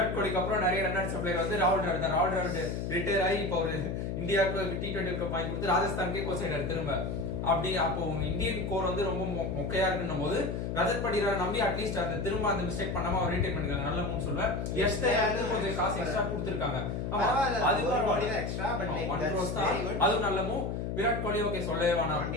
கோலிக்கு அப்புறம் நிறைய ரன் அடிச்ச பிளேயர் வந்து ராகுல் டிராவிட் தான். ராகுல் டிராவிட் ரிட்டையர் ஆகி இப்போ ஒரு இந்தியாவுக்கு T20 வாங்கி கொடுத்து ராஜஸ்தானுக்கே கோச் ஆயிட்டாரு திரும்ப. அப்படி அப்போ இந்தியன் கோர் வந்து ரொம்ப மொக்கையா இருக்குன்னும் போது ரஜத் பட்டிதாரை நம்பி அட்லீஸ்ட் அந்த திரும்ப அந்த மிஸ்டேக் பண்ணாம அவர் ரீடைன் பண்ணிருக்காங்க. நல்ல மூணு சொல்லுவேன். கொஞ்சம் காசு எக்ஸ்ட்ரா கொடுத்துருக்காங்க. அதுவும் நல்ல மூவ். விராட் கோலி ஓகே சொல்லவே வேணாம்.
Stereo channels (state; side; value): noise; left; hum, 3 dB below the sound